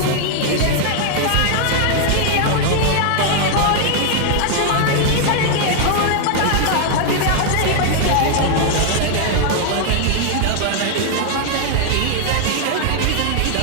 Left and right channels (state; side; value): different; both; correlation 0.00